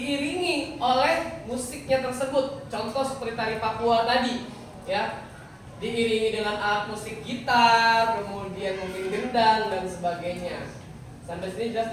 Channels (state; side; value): identical; both; correlation 1.00